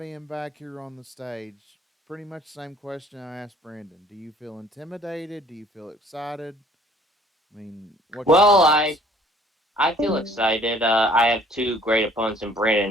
back here on the stage? Pretty much the same question I asked Brandon. Do you feel intimidated? Do you feel excited? I mean, what's your Well, I thoughts? I feel excited. I have two great opponents in Brandon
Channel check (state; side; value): normal; both; correlation 0.56